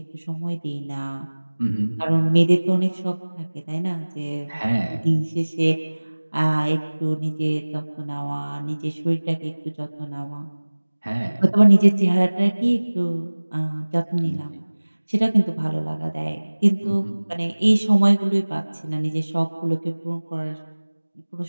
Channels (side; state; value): both; inverted; correlation -1.00